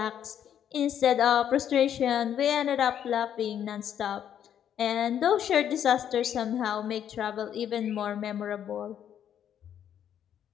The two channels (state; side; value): quieter; right; 9.6 dB